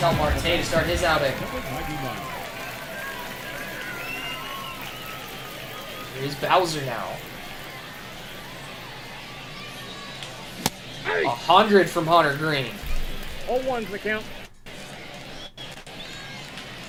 Marte to start his outing. Here's Bowser now. 100 from Hunter Green. All ones the count.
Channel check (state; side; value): identical; both; correlation 1.00